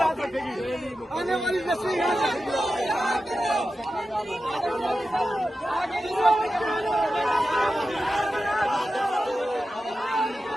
आने वाली नस्लें याद रखेगी।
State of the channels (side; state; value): both; normal; correlation 0.92